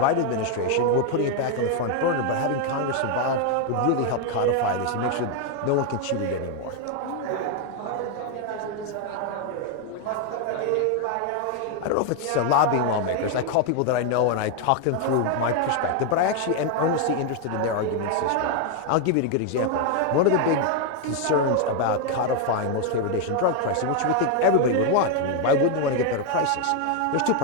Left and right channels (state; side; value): different; both; correlation 0.01